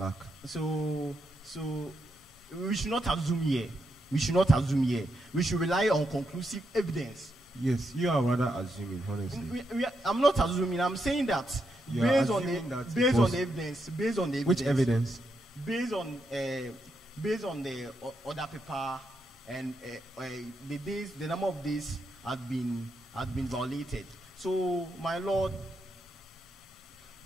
So we should not assume here. We should rely on conclusive evidence. Yes, you are rather assuming, honestly. I'm not assuming. I'm saying that based on the evidence. Which evidence? Based on the other paper and the number of days had been violated. So, my lord,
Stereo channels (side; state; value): both; normal; correlation 0.82